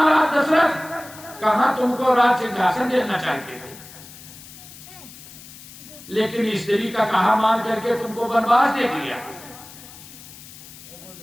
दशरथ कहां तुमको राज सिंहासन देना चाहते थे, लेकिन स्त्री का कहा मान करके तुमको वनवास दे दिया।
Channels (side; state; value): left; noise; hiss, 18 dB below the sound